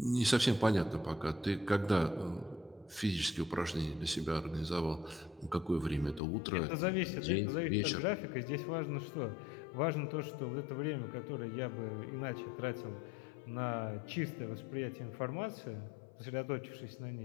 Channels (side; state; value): right; drops out; at 6.2 s